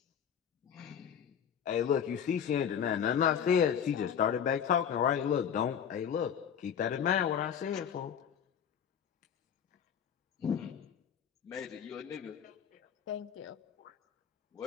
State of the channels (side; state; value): right; quieter; 8.2 dB